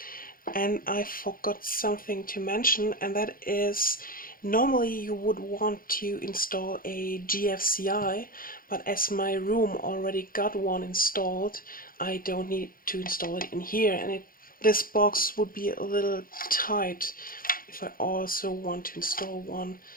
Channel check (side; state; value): right; late; 0.41 ms